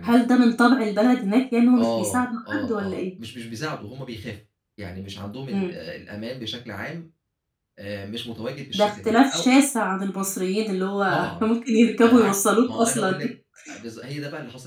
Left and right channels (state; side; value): identical; both; correlation 1.00